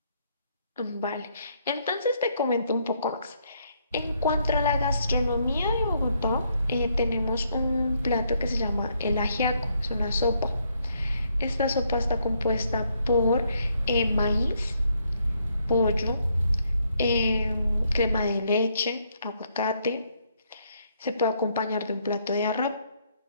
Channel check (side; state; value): both; inverted; correlation -0.73